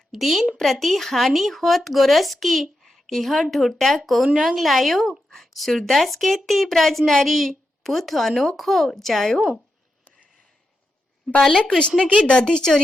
दिन प्रति हानि होत गोरस की, यह ढोटा कौन रंग लायो। सूरदास कहती ब्रज नारी, पुत अनोखो जायो। बालक कृष्ण की दधी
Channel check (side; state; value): both; normal; correlation 0.87